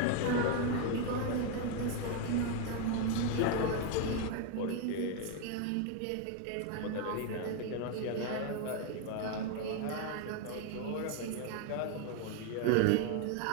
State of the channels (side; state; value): both; different; correlation 0.01